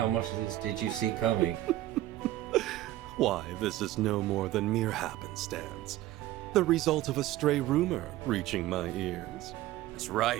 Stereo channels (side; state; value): left; quieter; 14.8 dB